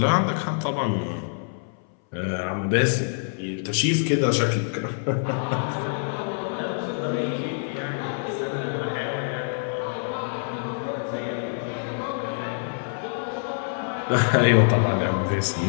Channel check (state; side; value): silent; right; 61 dB below the other